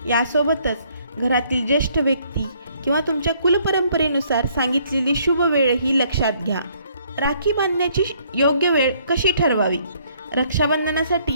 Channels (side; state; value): both; inverted; correlation -0.65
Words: यासोबतच घरातील ज्येष्ठ व्यक्ती किंवा तुमच्या कुलपरंपरेनुसार सांगितलेली शुभ वेळही लक्षात घ्या. राखी बांधण्याची योग्य वेळ कशी ठरवावी?